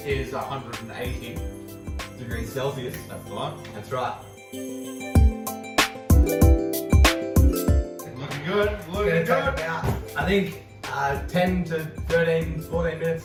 is 180. degrees Celsius. That's the one. That's right. Looking good. It's Looking gonna take good. about, I think, 10 to 13, 14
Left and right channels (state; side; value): identical; both; correlation 1.00